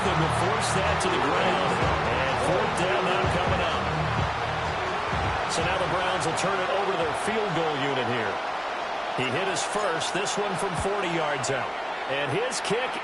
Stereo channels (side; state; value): both; identical; correlation 1.00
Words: him to force that to the ground. And 4th down now coming up. So now the Browns will turn it over to their field goal unit here. He hit his first, this one from 40 yards out. And his kick